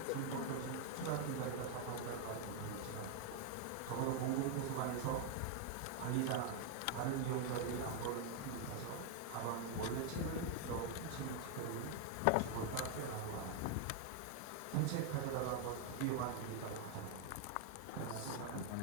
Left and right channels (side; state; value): both; different; correlation 0.01